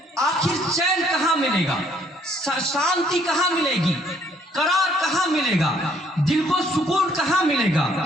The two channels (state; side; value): normal; both; correlation 0.64